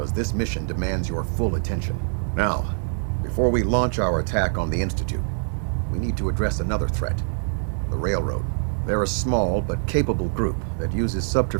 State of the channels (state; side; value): silent; left; digital silence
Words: this mission demands your full attention. Now, before we launch our attack on the Institute, we need to address another threat. The Railroad. They're a small but capable group that uses